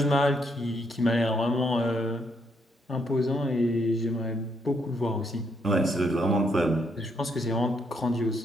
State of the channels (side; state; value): both; normal; correlation 0.74